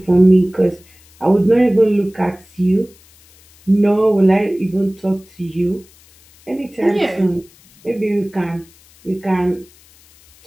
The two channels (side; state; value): left; noise; hiss, 28 dB below the sound